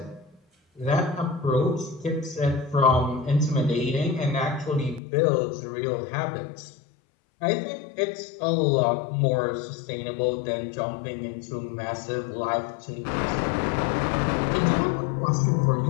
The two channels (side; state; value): right; drops out; at 5.0 s